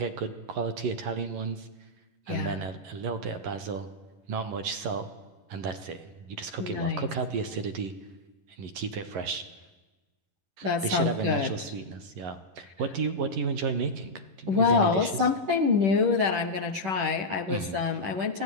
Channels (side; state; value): left; late; 10 ms